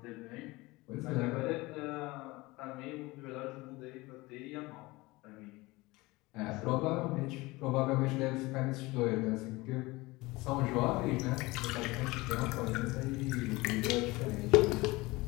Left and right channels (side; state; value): right; quieter; 21.8 dB